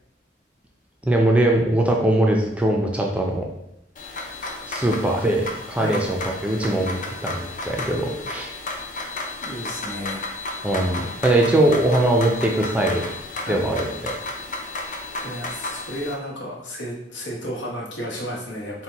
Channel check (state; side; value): normal; both; correlation 0.60